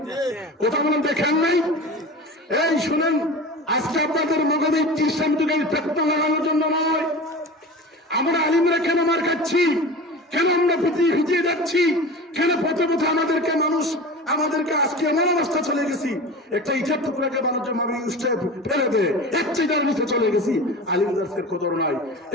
কথা বলেন, দেখেন নাই? এই শুনেন, আজকে আপনাদের মগজে ইসলাম যুগের ফেতনা লাগানোর জন্য নয়। আমরা আলিমরা কেন মার খাচ্ছি? আমরা ভিজিয়ে যাচ্ছি, কেন পথে পথে আমাদেরকে আজকে এমন অবস্থা চলে গেছি, একটা ইটার টুকরাকে মানুষের মামি উষ্টায় ফেলে দেয়, একটাই যার নিচে চলে গেছি, আলিমদার্সের কদর নাই।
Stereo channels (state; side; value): normal; both; correlation 0.33